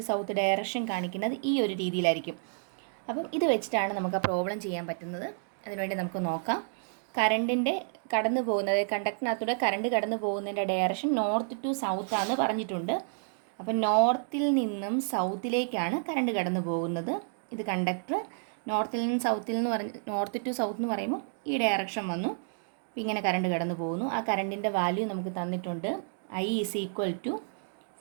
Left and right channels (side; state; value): left; silent; digital silence